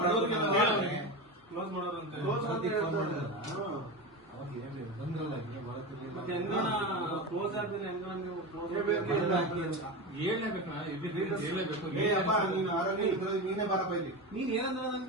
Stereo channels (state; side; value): normal; both; correlation 0.22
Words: ಕ್ಲೋಸ್ ಮಾಡೋರು ಅಂತ ಕ್ಲೋಸ್ ಆದ್ಮೇಲೆ ನೀನೇ ಬಾರಪ್ಪ ಇಲ್ಲಿ. ನೀನ್ ಏನಂದ್ರ